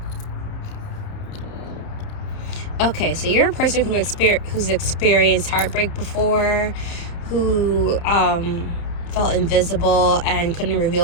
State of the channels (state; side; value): late; right; 30 ms